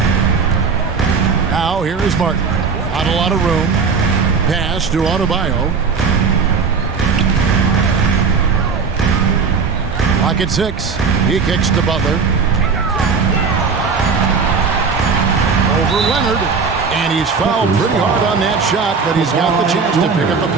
Now here is Martin. Not a lot of room. Pass to Adebayo. Clock at 6. He kicks to Butler. Over Leonard. And he's fouled pretty hard on that shot, but he's got the chance to pick up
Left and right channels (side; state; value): left; quieter; 5.3 dB